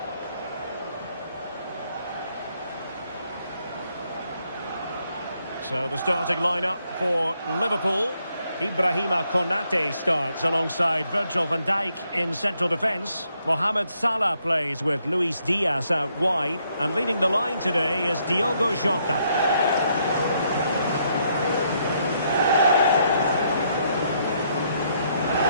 So the starting lineup for Liverpool. Ibrahima Konate starts alongside Virgil van Dijk in central defence. Mohamed Salah plays with Luis Diaz out wide. And leading the line today is Diogo Jota.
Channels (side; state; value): both; inverted; correlation -0.73